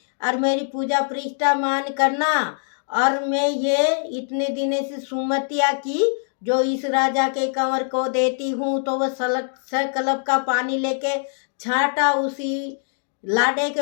और मेरी पूजा प्रतिष्ठा मान करना, और मैं ये इतने दिने से सुमतिया की जो इस राजा के कंवर को देती हूँ। तो वह सकलब का पानी लेके छाटा, उसी लाडे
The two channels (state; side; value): silent; right; digital silence